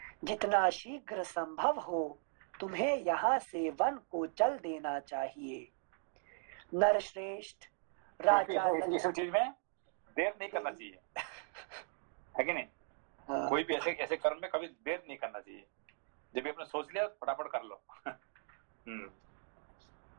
जितना शीघ्र संभव हो तुम्हें यहाँ से वन को चल देना चाहिए। नरश्रेष्ठ राजा इस चीज में देर नहीं करना चाहिए, है कि नहीं? हाँ। कोई भी ऐसे कर्म में कभी देर नहीं करना चाहिए। जब भी आपने सोच लिया फटाफट कर लो।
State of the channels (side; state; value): left; silent; 52 dB below the other